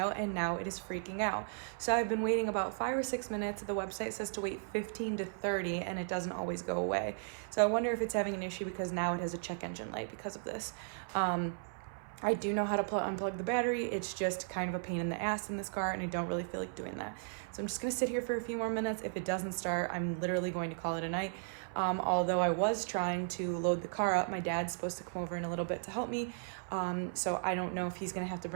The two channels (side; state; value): left; silent; 54 dB below the other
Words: and now it is freaking out. So I've been waiting about 5 or 6 minutes. The website says to wait 15 to 30, and it doesn't always go away. So I wonder if it's having an issue because now it has a check engine light because of this. I do know how to unplug the battery. It's just kind of a pain in the ass in this car, and I don't really feel like doing that. So I'm just gonna sit here for a few more minutes. If it doesn't start, I'm literally going to call it a night. Although I was trying to load the car up. My dad's supposed to come over in a little bit to help me. So I don't know if he's gonna have to